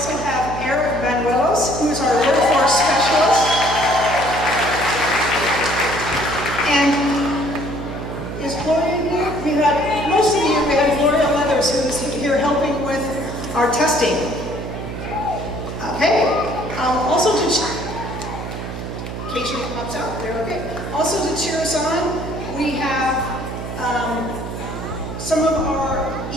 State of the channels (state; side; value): noise; right; hum, 7 dB below the sound